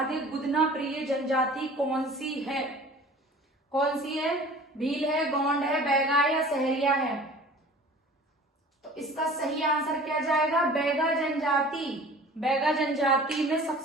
गुदना प्रिय जनजाति कौन सी है, कौन सी है, भील है, गोंड है, बैगा है, या सहरिया है। तो इसका सही आंसर क्या जाएगा, बैगा जनजाति। बैगा जनजाति में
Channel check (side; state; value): both; normal; correlation 0.45